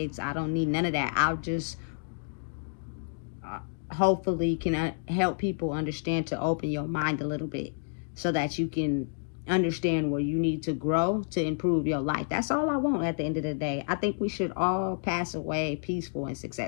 I don't need none of that. I'll just hopefully can help people understand, to open your mind a little bit so that you can understand where you need to grow to improve your life. That's all I want at the end of the day. I think we should all pass away peaceful and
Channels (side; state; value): right; silent; digital silence